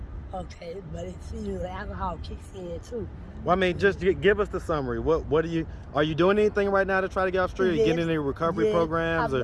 Okay, but it seems like alcohol kicks in too. Well, I mean, just give us the summary. What are you doing anything right now to try to get off the street? Are you getting any recovery programs?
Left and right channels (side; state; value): both; identical; correlation 1.00